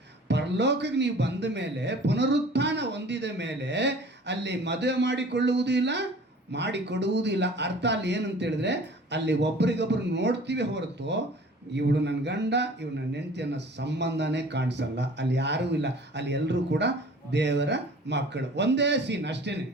ಪರಲೋಕಕ್ಕೆ ನೀವು ಬಂದ ಮೇಲೆ, ಪುನರುತ್ಥಾನ ಹೊಂದಿದ ಮೇಲೆ ಅಲ್ಲಿ ಮದುವೆ ಮಾಡಿಕೊಳ್ಳುವುದೂ ಇಲ್ಲ, ಮಾಡಿಕೊಡುವುದೂ ಇಲ್ಲ. ಅರ್ಥ ಅಲ್ಲಿ ಏನಂತ ಹೇಳಿದ್ರೆ, ಅಲ್ಲಿ ಒಬ್ರಿಗೊಬ್ರು ನೋಡ್ತೀವಿ ಹೊರತು ಇವಳು ನನ್ನ ಗಂಡ, ಇವಳು ನನ್ನ ಹೆಂಡತಿ ಅನ್ನೋ ಸಂಬಂಧನೇ ಕಾಣಿಸಲ್ಲ. ಅಲ್ಲಿ ಯಾರೂ ಇಲ್ಲ, ಅಲ್ಲಿ ಎಲ್ಲರೂ ಕೂಡ ದೇವರ ಮಕ್ಕಳು. ಒಂದೇ ಸೀನ್ ಅಷ್ಟೇ.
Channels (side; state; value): both; normal; correlation 0.46